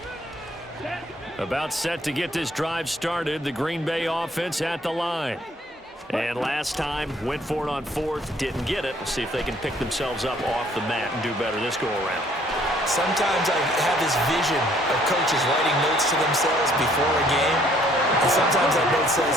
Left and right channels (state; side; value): normal; both; correlation 0.62